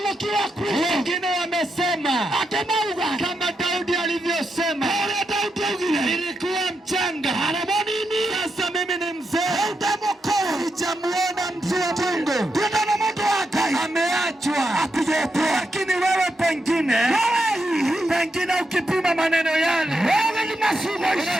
Wengine wamesema kama Daudi alivyosema, nilikuwa mchanga, sasa mimi ni mzee, sijamuona mtu wa Mungu, ameachwa. Lakini wewe pengine ukipima maneno yale,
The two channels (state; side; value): normal; both; correlation 0.84